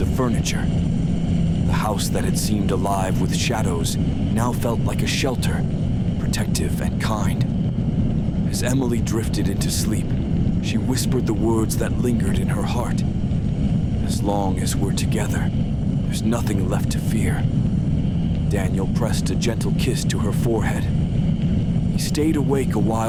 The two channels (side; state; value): both; identical; correlation 1.00